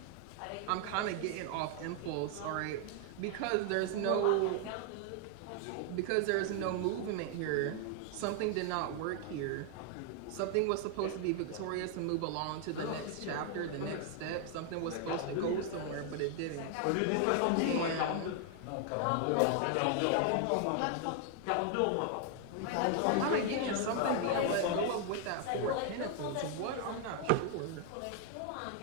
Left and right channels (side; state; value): both; different; correlation 0.00